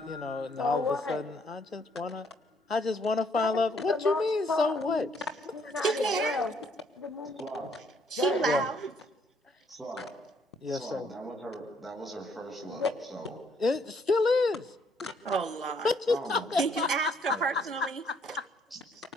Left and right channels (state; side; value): normal; both; correlation 0.67